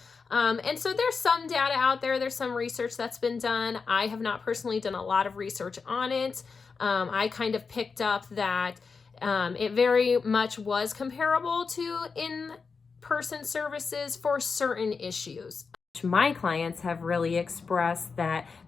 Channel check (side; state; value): right; quieter; 5.0 dB